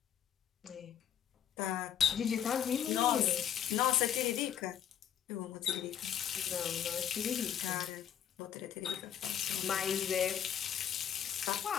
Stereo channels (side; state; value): right; quieter; 9.6 dB